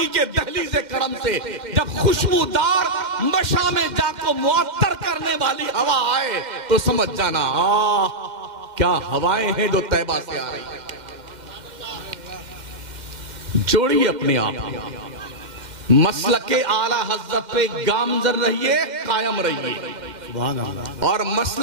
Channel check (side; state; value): left; late; 2.1 ms